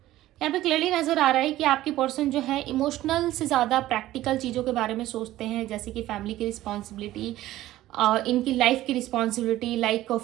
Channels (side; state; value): left; quieter; 15.1 dB